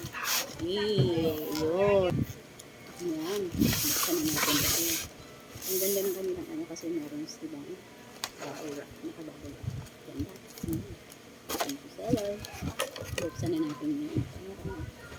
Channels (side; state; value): both; identical; correlation 1.00